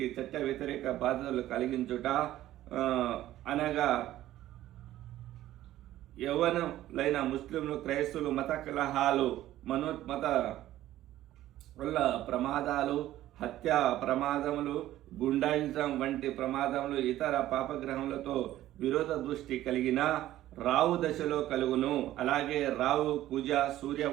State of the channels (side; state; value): left; quieter; 14.1 dB